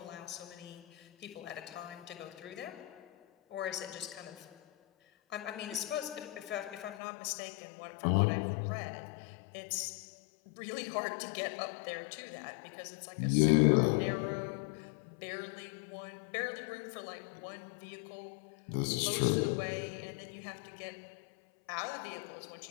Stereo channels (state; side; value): drops out; right; at 7.0 s